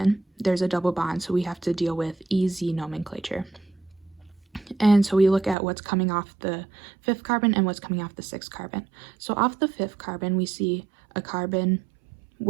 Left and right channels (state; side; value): drops out; left; at 5.6 s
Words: there's a double bond, so we have to deal with EZ nomenclature. And so we look at what's coming off the 5th carbon and what's coming off the 6th carbon. So off the 5th carbon, we see a carbon